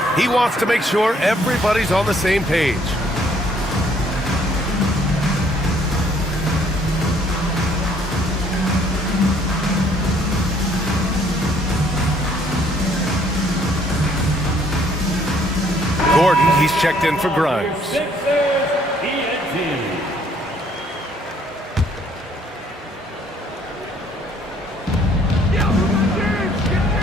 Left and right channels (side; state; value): both; normal; correlation 0.63